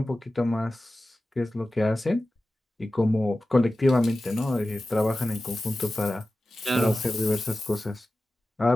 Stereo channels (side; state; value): both; normal; correlation 0.95